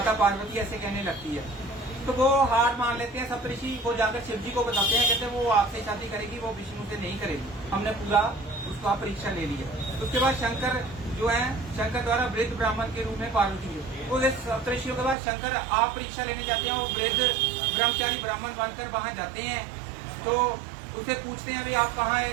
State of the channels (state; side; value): drops out; left; at 15.2 s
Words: पार्वती ऐसे कहने लगती है। तो वो हार मान लेते हैं सप्तऋषि, वो जाकर शिव जी को बताते हैं, कहते हैं वो आपसे शादी करेगी, वो विष्णु से नहीं करेगी, हमने पूरा उसका परीक्षा ले लिया। उसके बाद शंकर जो है, शंकर द्वारा वृद्ध ब्राह्मण के रूप में पार्वती है। वो सप्तऋषियों के बाद शंकर आप परीक्षा लेने जाते हैं, वो वृद्ध ब्रह्मचारी ब्राह्मण बनकर वहां जाते हैं। तो उसे पूछते हैं, भाई आप कहाँ है,